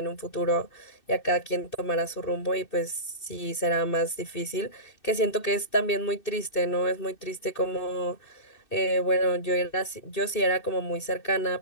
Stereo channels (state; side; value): late; right; 2.6 ms